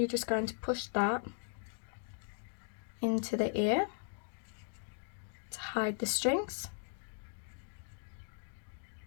just going to push that into the ear to hide the strings.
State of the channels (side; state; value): right; silent; 52 dB below the other